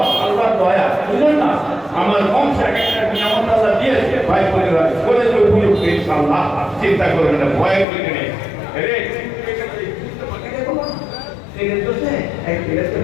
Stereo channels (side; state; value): right; drops out; at 7.9 s